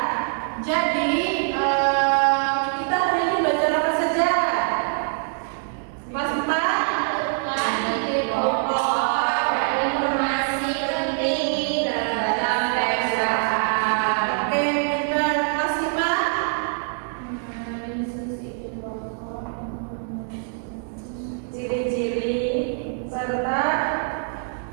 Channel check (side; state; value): left; silent; digital silence